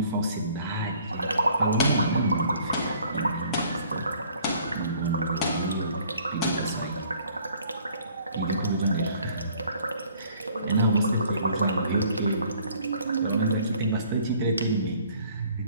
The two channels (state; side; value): inverted; both; correlation -0.57